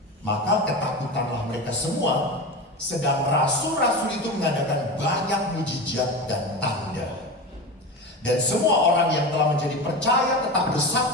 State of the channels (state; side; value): normal; both; correlation 0.25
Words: Maka ketakutanlah mereka semua, sedang rasul-rasul itu mengadakan banyak mujizat dan tanda. Dan semua orang yang telah menjadi percaya tetap